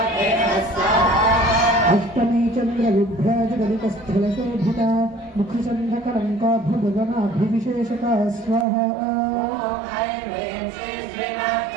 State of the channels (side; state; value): left; drops out; at 8.7 s